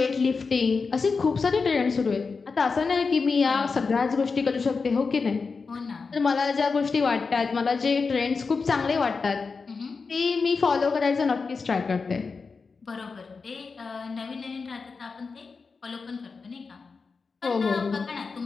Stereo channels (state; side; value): quieter; right; 4.7 dB